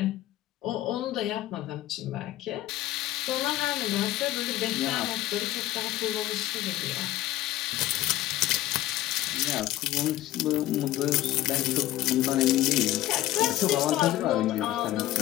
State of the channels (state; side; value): quieter; right; 15.0 dB